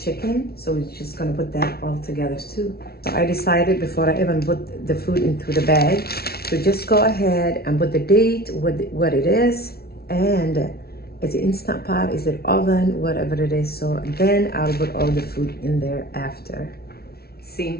So we're just gonna put that all together too. So I decided before I even put the food into the bag to just go ahead and put the date, what it is, and is it Instant Pot, is it oven, whatever it is. So then I'll put all the food in there after.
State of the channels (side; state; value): right; late; 0.45 ms